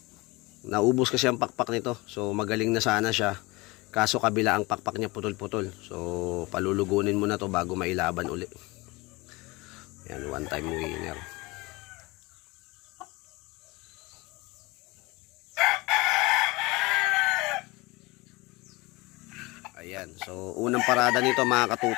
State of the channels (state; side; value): quieter; right; 23.4 dB